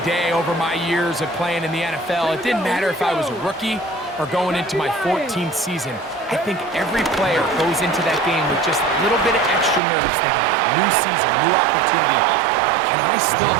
day over my years of playing in the NFL, it didn't matter if I was a rookie or going into my 14th season. I think every player goes into that game with just a little bit of extra nerves, thinking, new season, new opportunity. Can I still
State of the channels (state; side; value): drops out; left; at 9.8 s